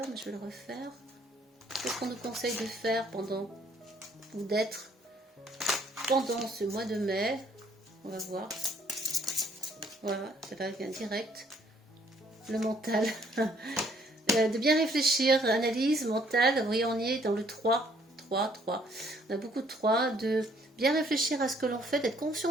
mais je vais le refaire. Qu'est-ce qu'on nous conseille de faire pendant ou d'être pendant ce mois de mai? On va voir. Voilà, ça va bien direct. Le mental. De bien réfléchir, analyse mentale. Vous voyez, on y est dans le 3. 3. On a beaucoup de 3. De bien réfléchir à ce que l'on fait, d'être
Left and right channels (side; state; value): both; normal; correlation 0.63